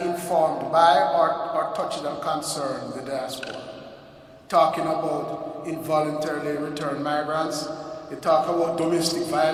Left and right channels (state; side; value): identical; both; correlation 1.00